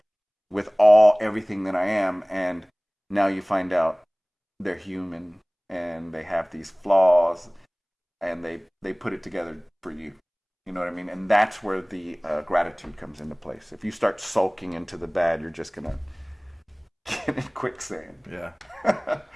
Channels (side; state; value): both; identical; correlation 1.00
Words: with everything that I am, and now you find out they're human and they have these flaws, and they put it together for you. You know what I mean? And that's where the gratitude comes into place. If you start sulking into the bad, you're just gonna get in quicksand. Yeah.